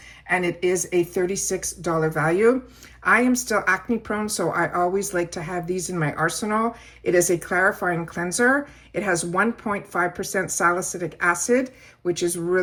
and it is a $36 value. I am still acne prone, so I always like to have these in my arsenal. It is a clarifying cleanser. It has 1.5% salicylic acid, which is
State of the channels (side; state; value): both; identical; correlation 1.00